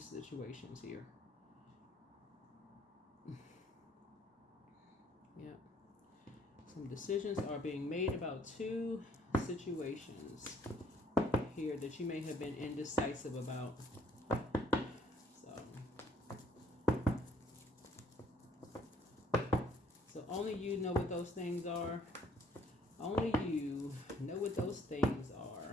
here. Yeah. Some decisions are being made about two situations here that you may have been indecisive about. So only you know what those things are. Only you know what those things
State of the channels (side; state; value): both; normal; correlation 0.61